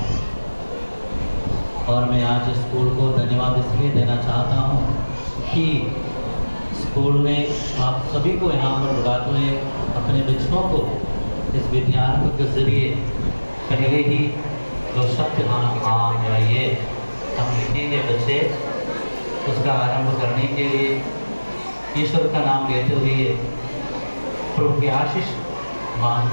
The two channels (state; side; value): inverted; both; correlation -1.00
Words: और मैं आज स्कूल को धन्यवाद इसलिए देना चाहता हूँ कि स्कूल ने आप सभी को यहाँ पर बुलाते हुए अपने बच्चों को इस विद्यारंभ के जरिए पहले ही जो शब्द हम ये हम लिखेंगे बच्चे, उसका आरंभ करने के लिए ईश्वर का नाम लेते हुए प्रभु की आशीष